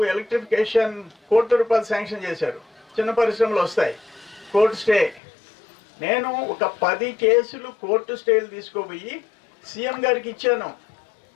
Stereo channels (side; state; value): right; drops out; at 5.2 s